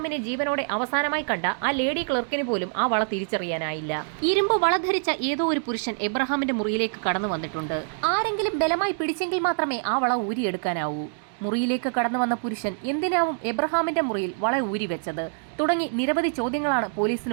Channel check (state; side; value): silent; left; digital silence